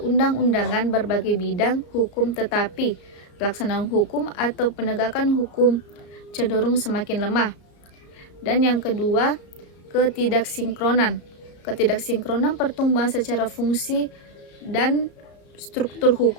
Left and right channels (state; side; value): late; right; 34 ms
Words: berbagai bidang hukum, tetapi pelaksanaan hukum atau penegakan hukum cenderung semakin lemah. Dan yang kedua, ketidaksinkronan. Ketidaksinkronan pertumbuhan secara fungsi dan struktur